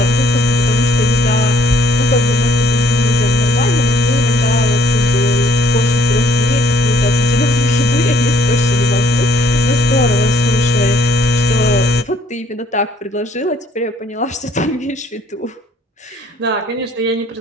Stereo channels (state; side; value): normal; both; correlation 0.63